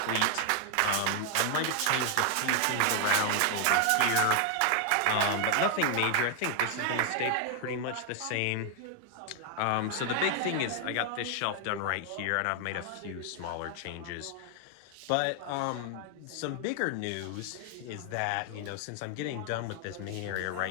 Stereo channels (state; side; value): different; both; correlation 0.00